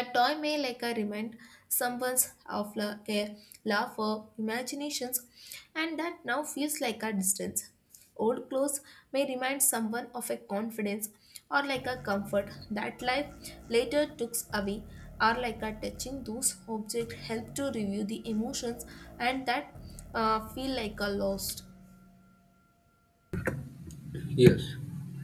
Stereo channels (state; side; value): identical; both; correlation 1.00